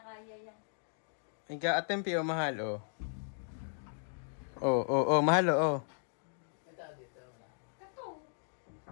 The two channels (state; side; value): silent; right; digital silence